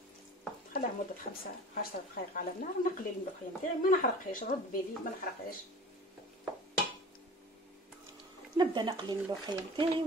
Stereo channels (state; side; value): normal; both; correlation 0.42